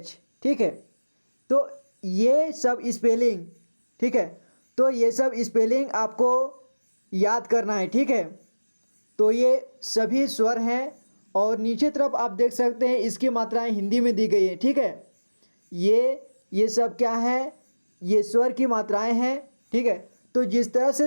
ठीक है। तो ये सब स्पेलिंग, ठीक है, तो ये सब स्पेलिंग आपको याद करना है, ठीक है। तो ये सभी स्वर हैं और नीचे तरफ आप देख सकते हैं इसकी मात्राएं हिंदी में दी गई हैं, ठीक है। ये सब क्या है, ये स्वर की मात्राएं हैं, ठीक है। तो जिस तरह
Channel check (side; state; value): both; inverted; correlation -1.00